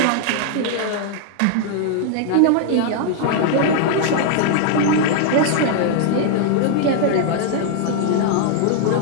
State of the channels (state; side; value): different; both; correlation 0.00